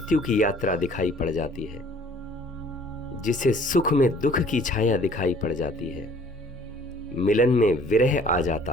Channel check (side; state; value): both; normal; correlation 0.55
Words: की यात्रा दिखाई पड़ जाती है, जिसे सुख में दुख की छाया दिखाई पड़ जाती है, मिलन में विरह आ